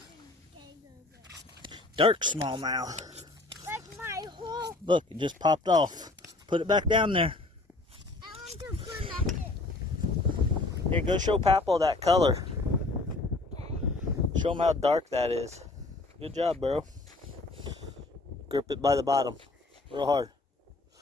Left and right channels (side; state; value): right; quieter; 3.1 dB